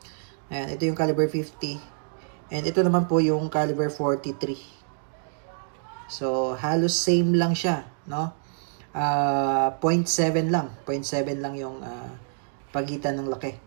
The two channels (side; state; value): left; silent; digital silence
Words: Ayan, ito yung caliber 50. And ito naman po yung caliber 43. So halos same lang siya, no? 0.7 lang. 0.7 lang yung pagitan ng laki.